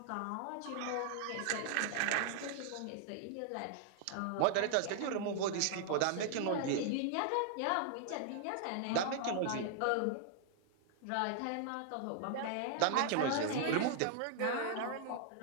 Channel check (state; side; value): different; both; correlation -0.01